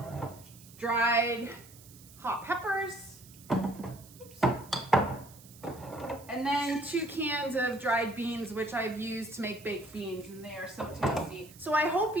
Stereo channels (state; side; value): noise; right; hiss, 21 dB below the sound